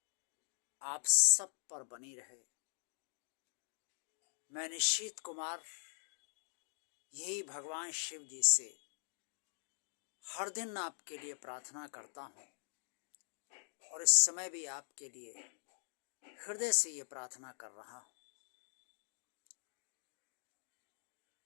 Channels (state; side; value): silent; right; digital silence